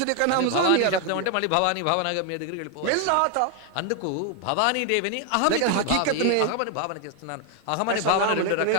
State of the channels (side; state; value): both; different; correlation 0.01